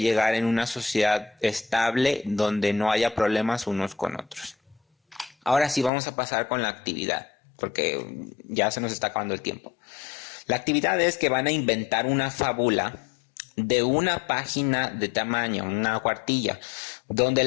en una sociedad estable donde no haya problemas unos con otros. Ahora sí vamos a pasar con la actividad, porque ya se nos está acabando el tiempo. La actividad es que van a inventar una fábula de una página de tamaño, una cuartilla, donde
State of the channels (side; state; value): right; drops out; at 5.9 s